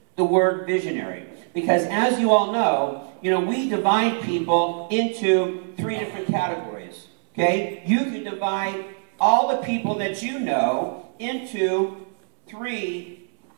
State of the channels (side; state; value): left; silent; 63 dB below the other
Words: the word visionary, because as you all know, we divide people into 3 different categories, okay? You can divide all the people that you know into 3